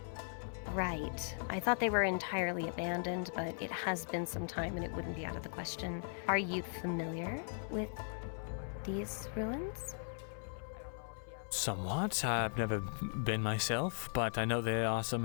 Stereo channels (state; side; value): silent; right; 52 dB below the other